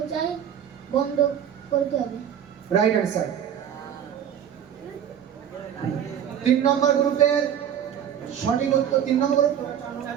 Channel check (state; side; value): quieter; left; 9.2 dB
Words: বন্ধ করতে হবে। Right answer. 3 নম্বর গ্রুপের সঠিক উত্তর। 3 নম্বর গ্রুপ,